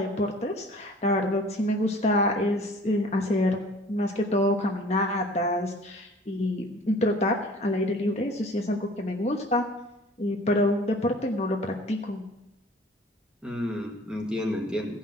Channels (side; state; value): both; normal; correlation 0.48